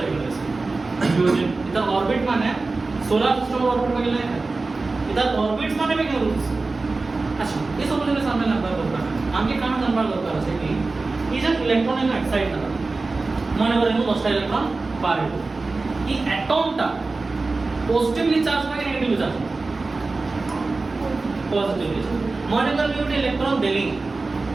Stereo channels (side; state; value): left; quieter; 3.6 dB